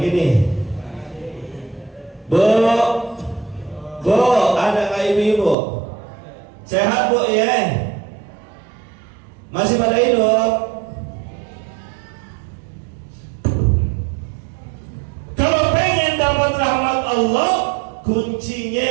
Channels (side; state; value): left; drops out; at 5.6 s